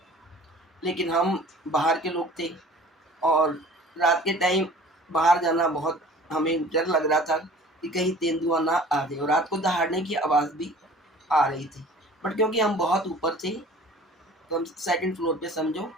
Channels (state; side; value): normal; both; correlation 0.46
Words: लेकिन हम बाहर के लोग थे और रात के टाइम बाहर जाना बहुत हमें डर लग रहा था कि कहीं तेंदुआ ना आ जाए, और रात को दहाड़ने की आवाज़ भी आ रही थी। बट क्योंकि हम बहुत ऊपर थे, तो हम सेकंड फ्लोर पे समझो,